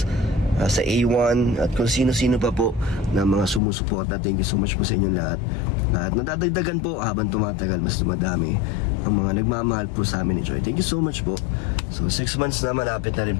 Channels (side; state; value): right; drops out; at 3.6 s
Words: sa A1, at kung sino-sino pa po na mga sumusuporta. Thank you so much po sa inyong lahat. At nadadagdagan po habang tumatagal, mas dumadami ang mga nagmamahal po sa amin ni Joy. Thank you so much po. So 6 months na, malapit na rin